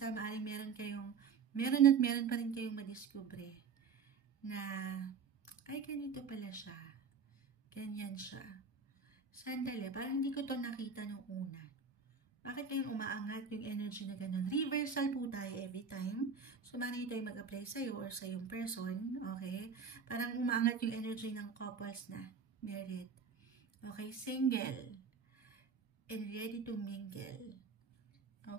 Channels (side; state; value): left; quieter; 5.7 dB